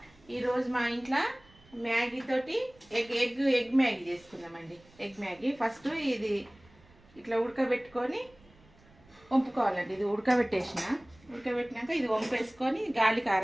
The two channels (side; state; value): right; noise; rumble, 28 dB below the sound